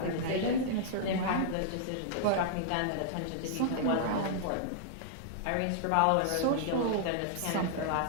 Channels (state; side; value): different; both; correlation -0.01